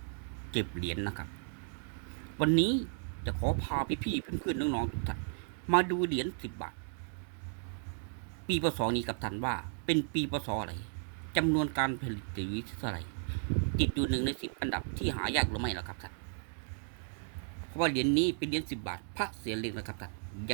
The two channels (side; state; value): left; silent; 55 dB below the other